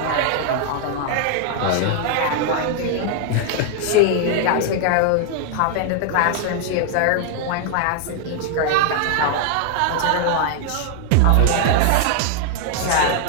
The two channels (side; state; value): both; different; correlation 0.00